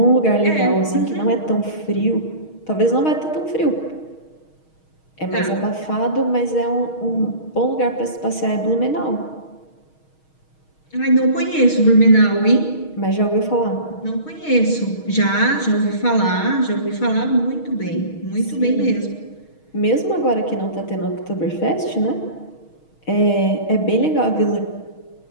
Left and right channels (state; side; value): late; right; 6.4 ms